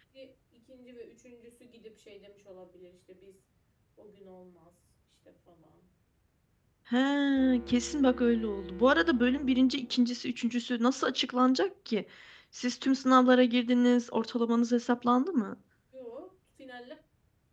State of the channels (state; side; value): identical; both; correlation 1.00